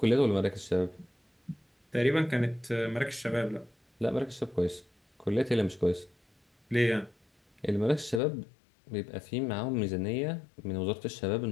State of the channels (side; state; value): right; drops out; at 8.2 s